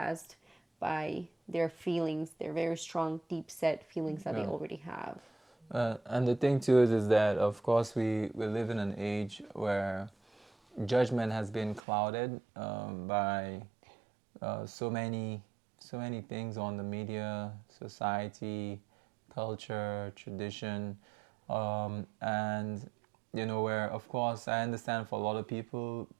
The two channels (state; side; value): drops out; left; at 11.8 s